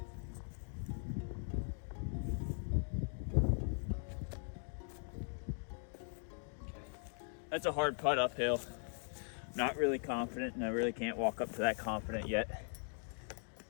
That's a hard putt uphill. Not really confident, and I really can't walk up to that confident yet.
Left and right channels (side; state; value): right; silent; 51 dB below the other